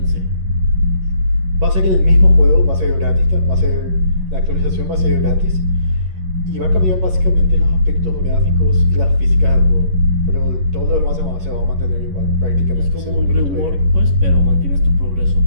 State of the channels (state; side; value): late; left; 11 ms